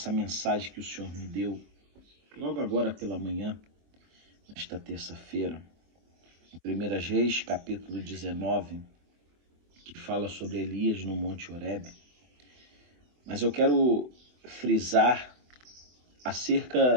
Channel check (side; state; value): left; late; 24 ms